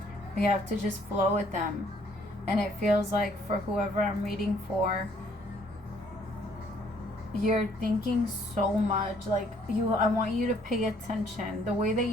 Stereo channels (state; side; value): normal; both; correlation 0.63